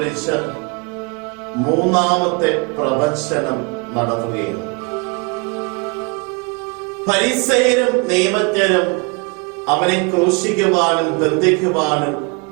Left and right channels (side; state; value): left; quieter; 31.1 dB